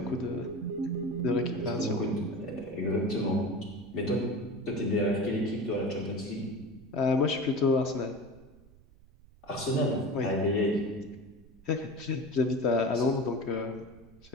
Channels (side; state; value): right; noise; rumble, 24 dB below the sound